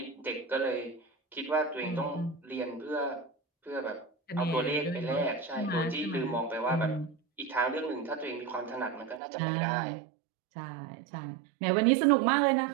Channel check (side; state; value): left; drops out; at 9.2 s